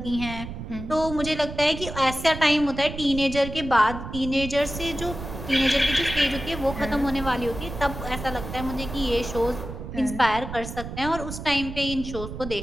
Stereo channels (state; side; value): noise; right; rumble, 9 dB below the sound